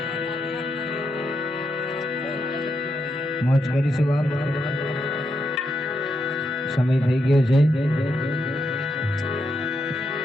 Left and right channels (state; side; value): normal; both; correlation 0.82